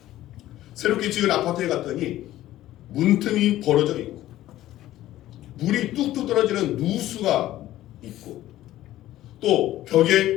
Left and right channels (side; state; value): right; quieter; 14.4 dB